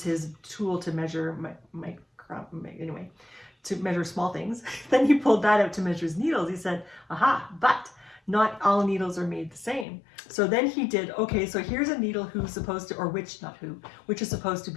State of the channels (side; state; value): right; drops out; at 9.9 s